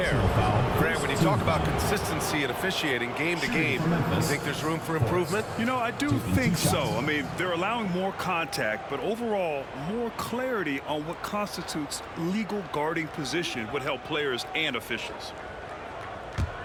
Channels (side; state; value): both; identical; correlation 1.00